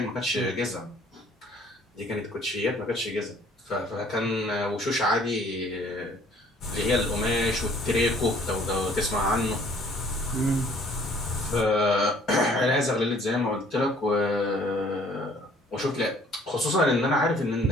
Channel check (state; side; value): normal; both; correlation 0.57